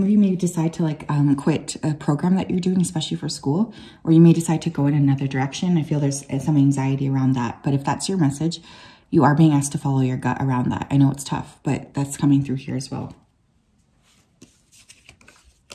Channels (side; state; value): both; identical; correlation 1.00